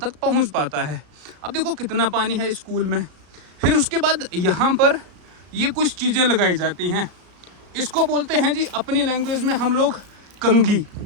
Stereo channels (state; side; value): late; left; 34 ms